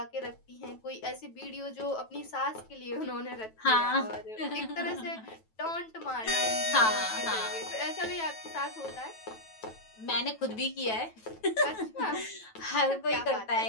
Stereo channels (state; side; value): late; right; 9.2 ms